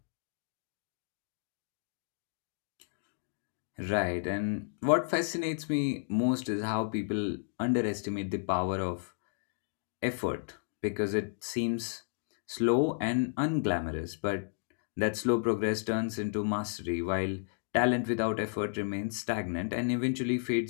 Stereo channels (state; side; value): silent; right; digital silence